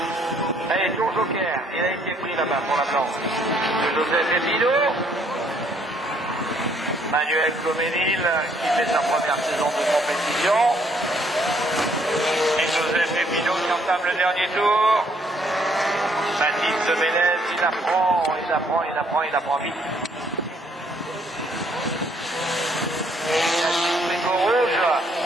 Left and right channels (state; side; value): normal; both; correlation 0.67